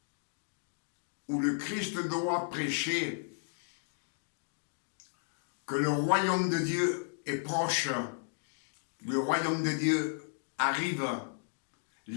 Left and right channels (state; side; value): silent; right; digital silence